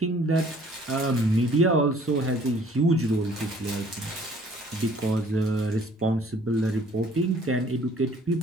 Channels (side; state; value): both; normal; correlation 0.56